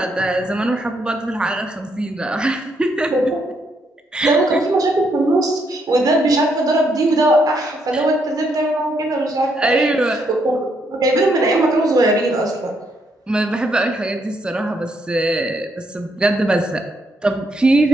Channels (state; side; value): normal; both; correlation 0.75